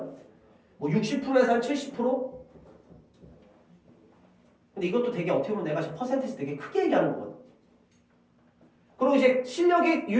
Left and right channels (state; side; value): identical; both; correlation 1.00